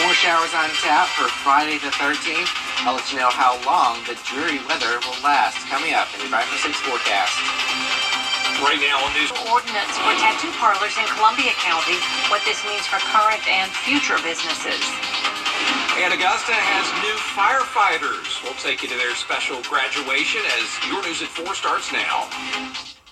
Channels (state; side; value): identical; both; correlation 1.00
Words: More showers on tap for Friday the 13th. I'll let you know how long the dreary weather will last. Coming up in your 5-for-6 forecast. Right now on news. Ordinance for tattoo parlors in Columbia County. What this means for current and future businesses. And Augusta has new firefighters. We'll take you to their special graduation as Your News at 4 starts now.